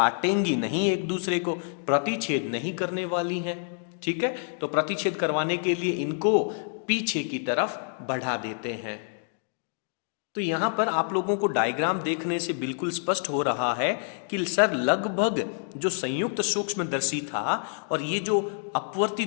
नहीं, एक दूसरे को प्रतिच्छेद नहीं करने वाली हैं। ठीक है, तो प्रतिच्छेद करवाने के लिए इनको पीछे की तरफ बढ़ा देते हैं। तो यहां पर आप लोगों को डायग्राम देखने से बिल्कुल स्पष्ट हो रहा है कि सर लगभग जो संयुक्त सूक्ष्मदर्शी था और ये जो अपवर्ती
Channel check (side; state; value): right; silent; 60 dB below the other